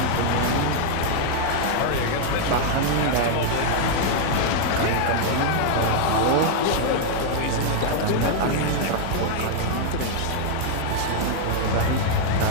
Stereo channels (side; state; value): both; different; correlation 0.00